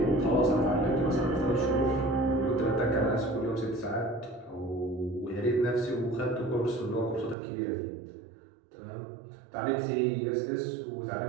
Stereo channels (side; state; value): left; drops out; at 7.4 s